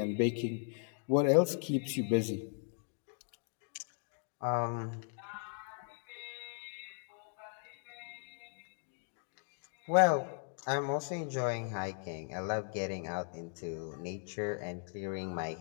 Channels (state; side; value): silent; right; 53 dB below the other